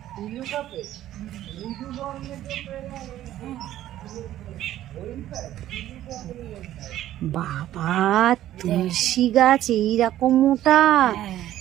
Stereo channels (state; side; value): quieter; left; 13.1 dB